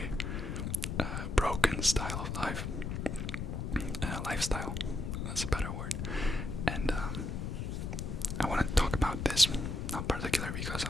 broken style of life, lifestyle. That's a better word. And I want to talk about this, not particularly because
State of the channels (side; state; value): left; noise; rumble, 3 dB below the sound